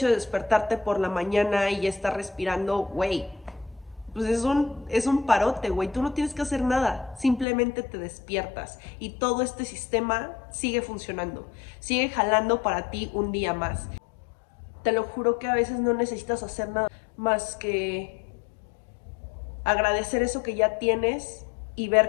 de despertarte por la mañana y ya estar respirando, güey, pues es un parote, güey. Tú no tienes que hacer nada. Simplemente te despiertas y todo este sistema sigue funcionando. Sigue jalando para ti un día más. Te lo juro que a veces no necesitas hacer nada más que agradecer eso que ya tienes y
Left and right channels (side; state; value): right; drops out; at 7.5 s